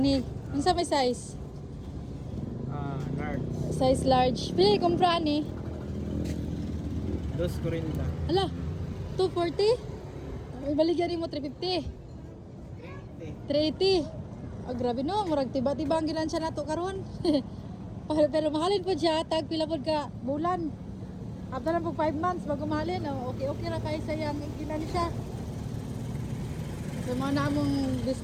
ni. Ano sa may size? Large. Size large. Pili kumpra ni. 240. Ala, 240? May baligyan mo 350. 380. Oh, grabe no, murag tiba-tiba ang gilansya nato karon. Pero mahalin po siya, tag pila pod ka bulan. After na po 5 months bago mahalin, oh, okay ra kay sayang gilansya. So mga namong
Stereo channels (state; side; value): identical; both; correlation 1.00